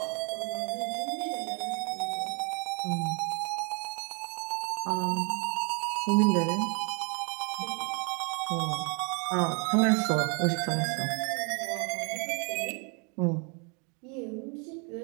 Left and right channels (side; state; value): left; quieter; 35.3 dB